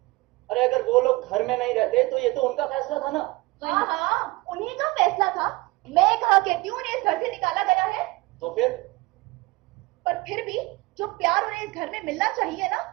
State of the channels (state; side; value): quieter; left; 22.1 dB